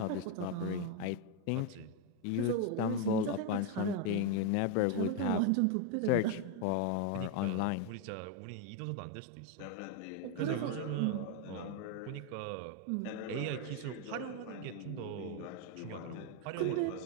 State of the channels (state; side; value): different; both; correlation 0.01